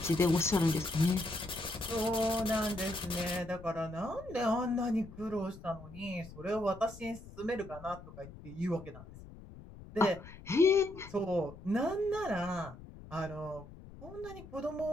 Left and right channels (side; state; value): left; noise; rumble, 16 dB below the sound